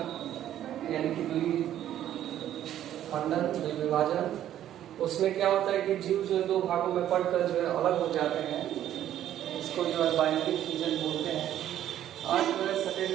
यानी कि द्विखंडन विभाजन। उसमें क्या होता है कि जीव जो दो भागों में पड़कर जो है अलग हो जाते हैं, इसको जो है बाइनरी फ्यूजन बोलते हैं। आज जो है सेकेंड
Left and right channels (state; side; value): quieter; left; 11.6 dB